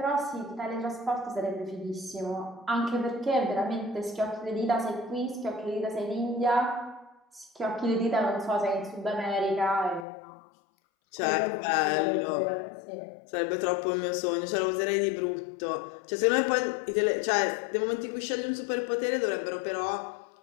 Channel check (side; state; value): right; drops out; at 10.1 s